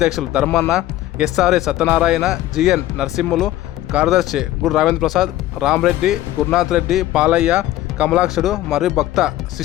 ధర్మన్న, ఎస్ఆర్ఏ సత్యనారాయణ, జిఎన్ నరసింహులు, కార్యదర్శి గురు రావేంద్ర ప్రసాద్, రామరెడ్డి, గురునాథ్ రెడ్డి, పాలయ్య, కమలాక్షుడు మరియు భక్త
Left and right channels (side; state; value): right; quieter; 14.7 dB